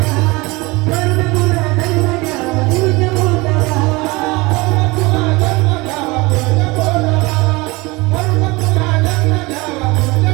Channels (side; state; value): left; quieter; 23.6 dB